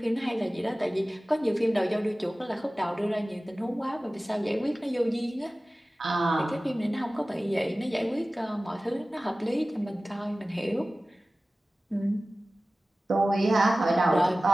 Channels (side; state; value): both; normal; correlation 0.97